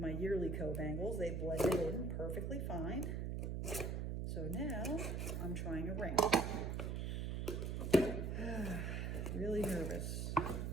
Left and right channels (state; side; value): noise; right; hum, 1 dB below the sound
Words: yearly co-bangles. They blended in perfectly fine. So now I'm trying a ring. Really nervous.